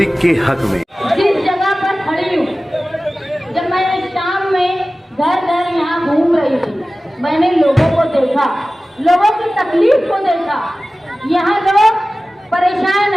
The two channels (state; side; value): normal; both; correlation 0.96